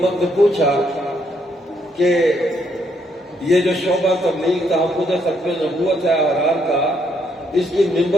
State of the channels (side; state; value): both; normal; correlation 0.73